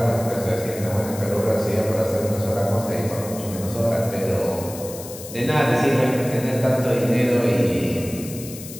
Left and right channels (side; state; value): left; noise; hiss, 13 dB below the sound